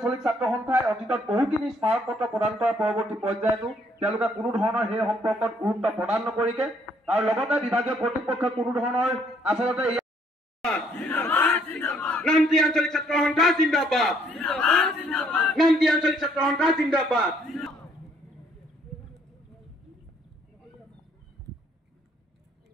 ছাত্ৰ সন্থাই অতীতত বহুখিনি স্মাৰক পত্ৰ প্ৰদান কৰাৰ পৰৱৰ্তী পৰ্যায়তো তেওঁলোকে কোনো ধৰণৰ সেই সম্পৰ্কত গুৰুত্ব প্ৰদান নকৰিকে আৰু লগতে বিভাগীয় কৰ্তৃপক্ষই কোনো ধৰণৰ আচলতে নামতি আঞ্চলিক ছাত্ৰ সন্থা জিন্দাবাদ নামতি আঞ্চলিক ছাত্ৰ সন্থা জিন্দাবাদ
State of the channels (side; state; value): both; normal; correlation 0.66